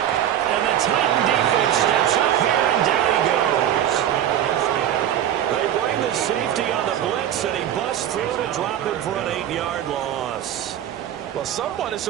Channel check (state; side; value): quieter; left; 10.9 dB